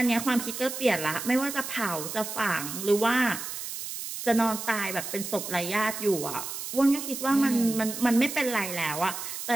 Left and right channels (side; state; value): right; noise; hiss, 7 dB below the sound